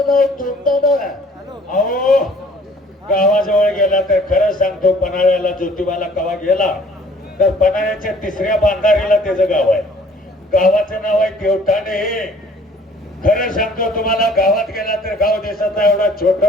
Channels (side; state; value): both; normal; correlation 0.55